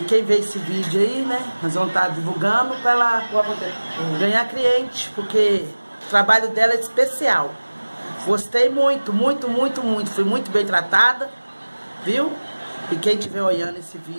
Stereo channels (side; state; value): both; inverted; correlation -1.00